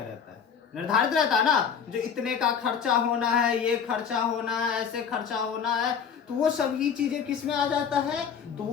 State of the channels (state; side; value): quieter; right; 7.2 dB